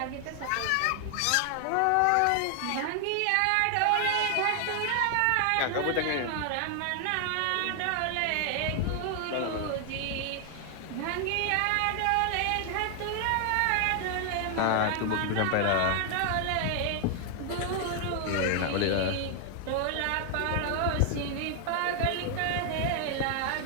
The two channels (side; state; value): both; different; correlation 0.00